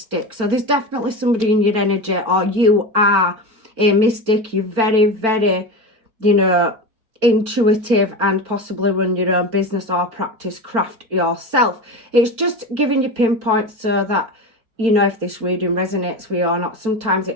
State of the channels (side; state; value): left; late; 4.5 ms